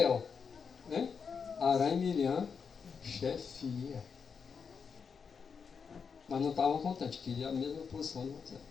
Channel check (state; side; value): quieter; right; 6.0 dB